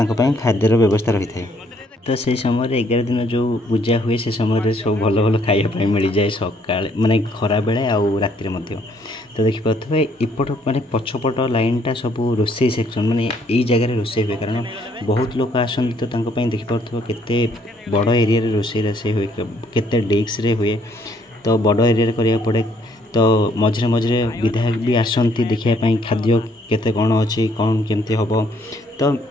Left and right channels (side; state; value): both; normal; correlation 0.67